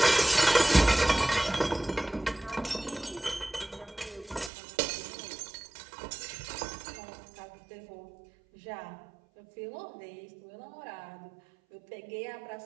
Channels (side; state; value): left; drops out; at 4.5 s